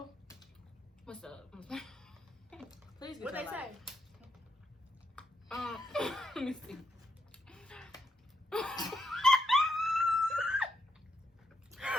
What's up? Please get What your they life. say? Let me see.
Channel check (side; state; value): both; normal; correlation 0.80